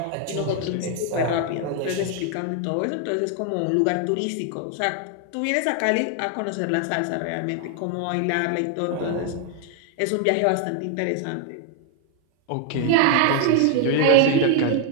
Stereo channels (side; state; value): both; different; correlation 0.00